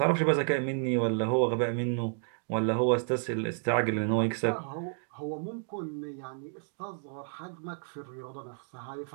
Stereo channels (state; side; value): silent; left; digital silence